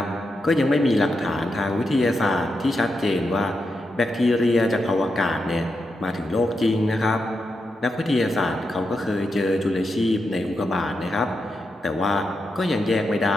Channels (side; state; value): both; normal; correlation 0.86